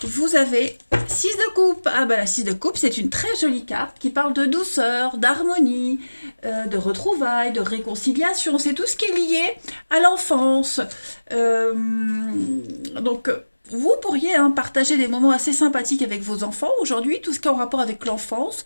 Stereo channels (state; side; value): inverted; both; correlation -1.00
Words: Vous avez 6 de coupe. Ah bah la 6 de coupe, c'est une très jolie carte qui parle de douceur, d'harmonie, de retrouvailles, de réconciliation. C'est tout ce qui est lié à l'enfance. Donc vous pourriez partager des moments assez sympathiques avec vos enfants aujourd'hui, tout ce qui est en rapport avec l'enfance,